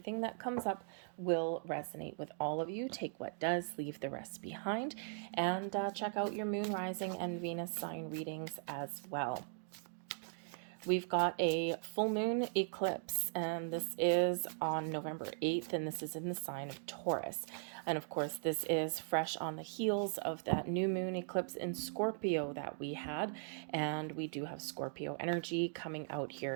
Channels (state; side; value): silent; left; digital silence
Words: that comes up will resonate with all of you. Take what does, leave the rest behind, and check out your moon, rising, and Venus sign readings as well. We've got a full moon eclipse, and this is on November 8th, and this is in the sign of Taurus. And of course, this is fresh on the heels of that new moon eclipse in Scorpio that we had, and we do have Scorpio energy coming out